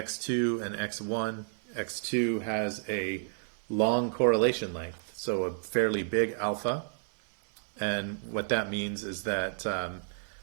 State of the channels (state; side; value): silent; left; digital silence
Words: and x1. x2 has a long correlation length, so a fairly big alpha. And what that means is that